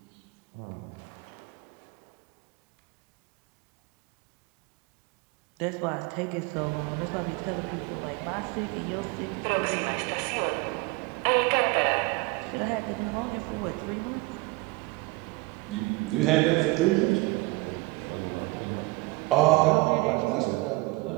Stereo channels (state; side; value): quieter; left; 23.2 dB